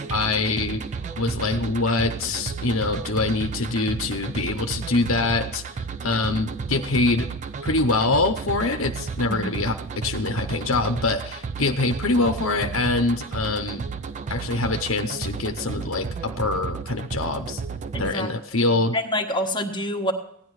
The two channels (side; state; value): both; normal; correlation 0.24